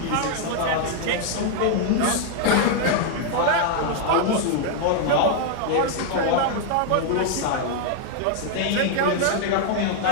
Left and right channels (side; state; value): both; different; correlation 0.00